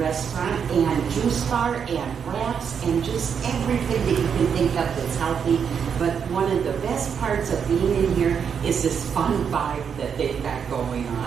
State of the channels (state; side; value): quieter; left; 7.1 dB